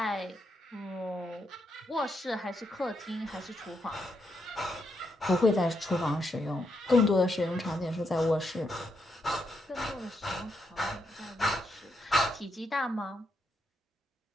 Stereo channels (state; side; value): normal; both; correlation 0.80